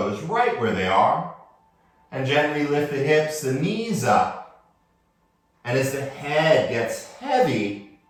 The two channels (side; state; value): both; identical; correlation 1.00